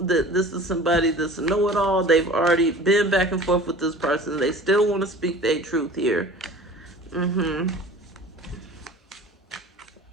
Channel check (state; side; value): normal; both; correlation 0.42